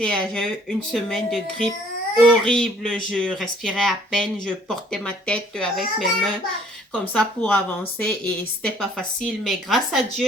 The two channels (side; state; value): both; normal; correlation 0.59